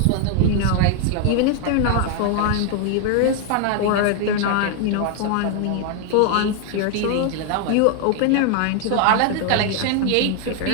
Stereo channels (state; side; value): different; both; correlation 0.00